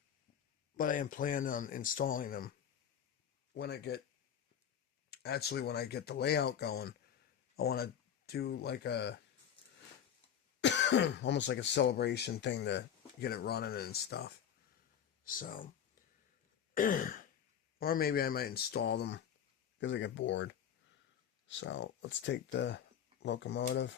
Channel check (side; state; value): right; quieter; 8.8 dB